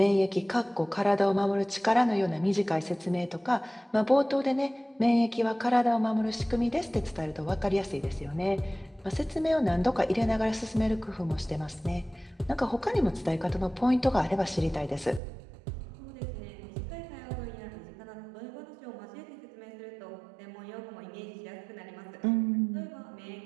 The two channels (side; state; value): left; drops out; at 15.2 s